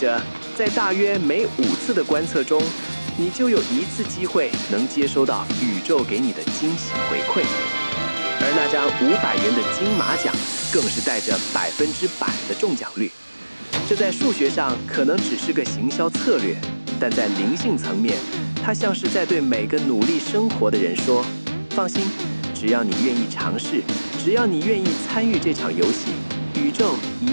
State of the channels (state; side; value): inverted; both; correlation -1.00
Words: 在大约每5次的观测中，你就有1次机会能接收到宇宙给你的惊喜回馈。而那张500元的金马奖更是带着100%的中奖率。这在数学上可能只是个行销策略，但在灵性层面，它像是在对每个努力生活的人说：放心，只要你愿意尝试，只要你愿意参与这场游戏，宇宙